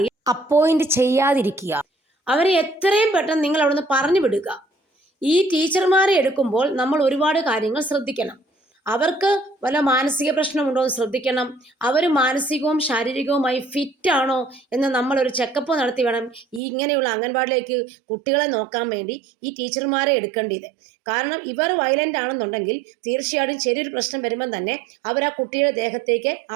അപ്പോയിന്റ് ചെയ്യാതിരിക്കുക. അവരെ എത്രയും പെട്ടെന്ന് നിങ്ങൾ അവിടെ നിന്ന് പറഞ്ഞു വിടുക. ഈ ടീച്ചർമാരെ എടുക്കുമ്പോൾ നമ്മൾ ഒരുപാട് കാര്യങ്ങൾ ശ്രദ്ധിക്കണം. അവർക്ക് വല്ല മാനസിക പ്രശ്നമുണ്ടോ എന്ന് ശ്രദ്ധിക്കണം. അവർ മാനസികവും ശാരീരികവുമായി ഫിറ്റാണോ എന്ന് നമ്മളൊരു ചെക്കപ്പ് നടത്തി വേണം ഇങ്ങനെയുള്ള അംഗൻവാടിയിലേക്ക് കുട്ടികളെ നോക്കാൻ വേണ്ടി ഈ ടീച്ചർമാരെ എടുക്കേണ്ടത്. കാരണം ഇവർ വയലൻ്റ് ആണെന്നുണ്ടെങ്കിൽ തീർച്ചയായിട്ടും ചെറിയൊരു പ്രശ്നം വരുമ്പം തന്നെ അവർ ആ കുട്ടിയുടെ ദേഹത്തേക്ക്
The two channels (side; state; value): left; drops out; at 16.6 s